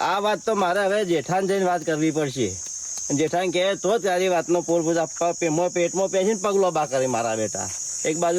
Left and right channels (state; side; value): identical; both; correlation 1.00